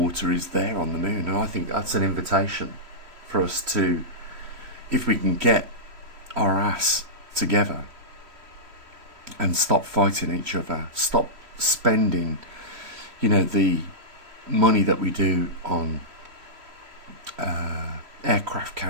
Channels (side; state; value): left; late; 3.1 ms